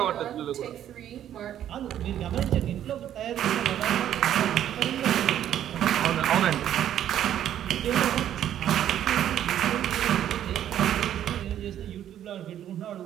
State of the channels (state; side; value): quieter; left; 10.9 dB